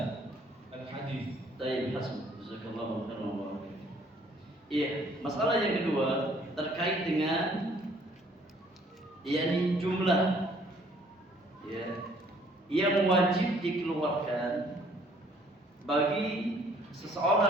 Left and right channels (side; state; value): both; normal; correlation 0.60